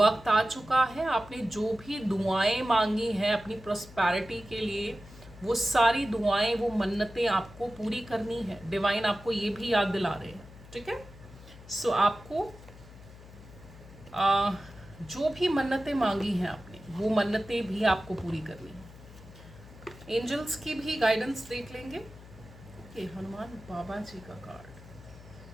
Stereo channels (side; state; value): left; noise; hum, 19 dB below the sound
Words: आ चुका है। आपने जो भी दुआएं मांगी हैं अपनी प्रोस्पैरिटी के लिए, वो सारी दुआएं, वो मन्नतें आपको पूरी करनी है। डिवाइन आपको ये भी याद दिला रहे हैं, ठीक है। सो आपको जो भी मन्नतें मांगी हैं आपने, वो मन्नतें भी आपको पूरी करनी है। एंजल्स की भी गाइडेंस देख लेंगे। ओके, हनुमान बाबा जी का कार्ड,